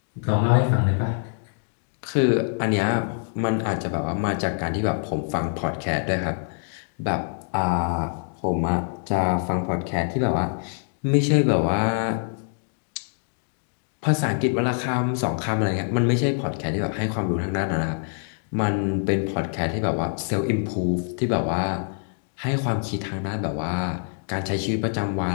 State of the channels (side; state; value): right; silent; digital silence